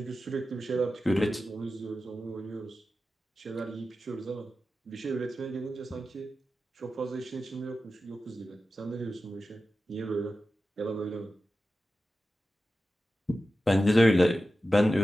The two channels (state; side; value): normal; both; correlation 0.93